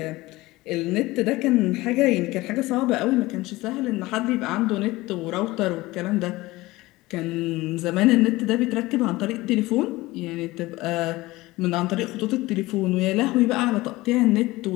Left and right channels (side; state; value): right; quieter; 19.6 dB